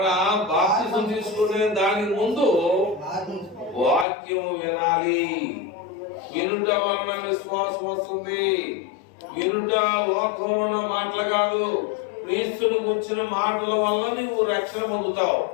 బాప్తిసం తీసుకునే దానికి ముందు వాక్యం వినాలి. వినుట వలన విశ్వాసం వస్తుంది. వినుట లోకంలో మాటలు కాదు, క్రీస్తుని గురించిన మాటల వల్ల నువ్వు రక్షణ పొందుతావు.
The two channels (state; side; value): drops out; right; at 4.0 s